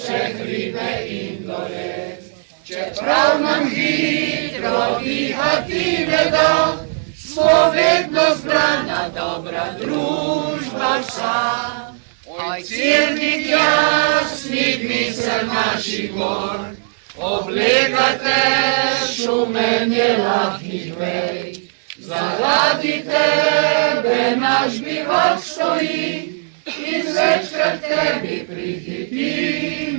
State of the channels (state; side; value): silent; left; 58 dB below the other